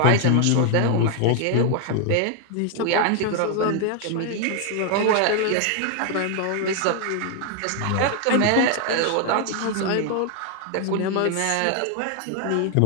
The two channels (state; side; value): different; both; correlation 0.00